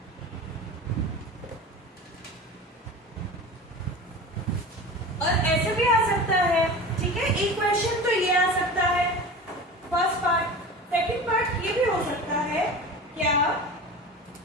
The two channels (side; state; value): both; normal; correlation 0.33